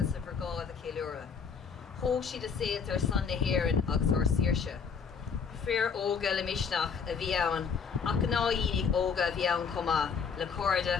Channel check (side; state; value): right; quieter; 5.9 dB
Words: of Vergá the Kilura. Ho she the sales are Sunday here in Oxor Sirsha. Fair Olga Lemishnach, a Viaun, Akanaini Olga Viaun Coma, Lacorda,